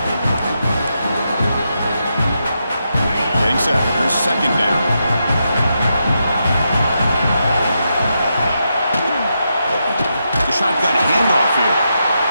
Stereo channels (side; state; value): both; inverted; correlation -0.84